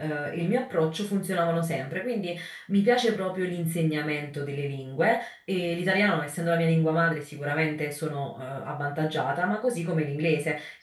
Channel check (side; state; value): both; identical; correlation 1.00